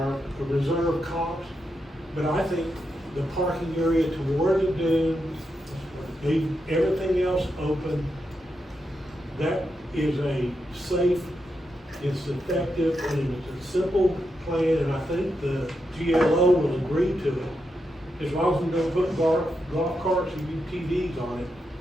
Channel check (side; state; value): both; normal; correlation 0.85